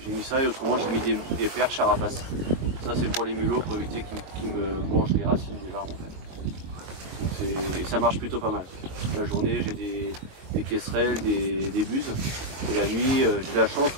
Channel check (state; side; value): late; left; 22 ms